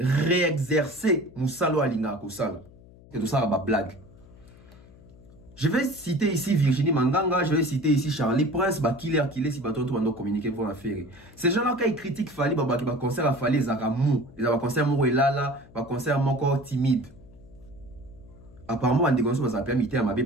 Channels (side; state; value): left; noise; hum, 23 dB below the sound